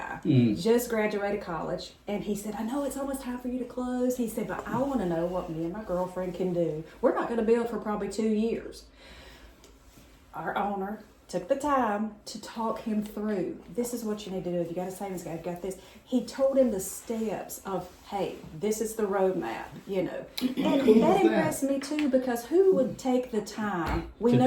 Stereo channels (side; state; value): both; identical; correlation 1.00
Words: just graduated college, and he said, I know it's almost time for you to close. He said, but I want to know what me and my girlfriend can do. We're not going to build for probably 2 years. Our owner took the time to talk him through, this is what you need to do. If you got a savings account, you've got this. He told him the steps of, hey, this is the roadmap, And that impressed me too, because who would take the time? We